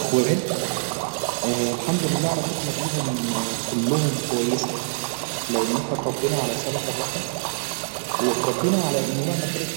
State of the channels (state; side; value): silent; left; 62 dB below the other